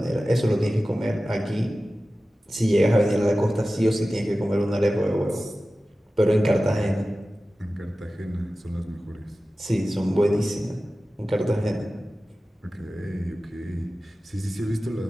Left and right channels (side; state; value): both; normal; correlation 0.95